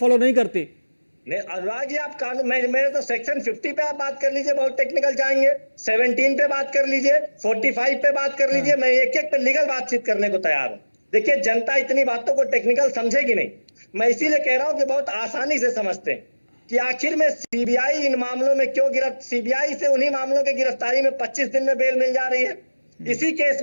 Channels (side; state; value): both; inverted; correlation -1.00